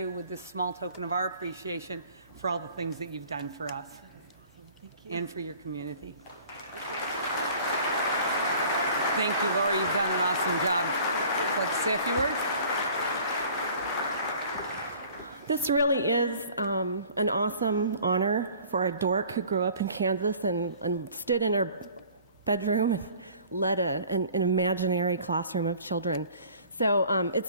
with this small token of our appreciation for all the things that you've done for us. And for your community. Thank you, Lori. You've done an awesome job. Would you like to say a few words? This really is an awesome honor for a dork who grew up in Kansas and stood in her bedroom and led an imaginary classroom of children. So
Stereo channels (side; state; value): both; inverted; correlation -0.50